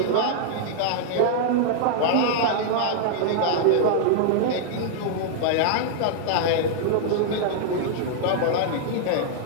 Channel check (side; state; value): both; different; correlation -0.01